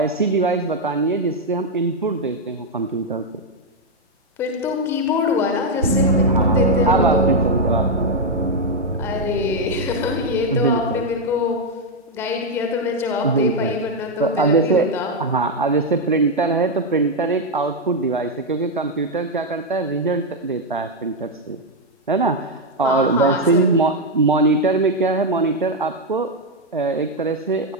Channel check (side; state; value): both; normal; correlation 0.02